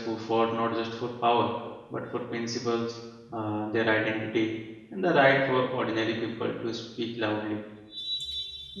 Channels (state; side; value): identical; both; correlation 1.00